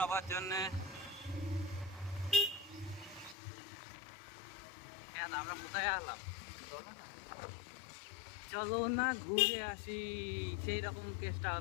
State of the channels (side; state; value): right; drops out; at 3.4 s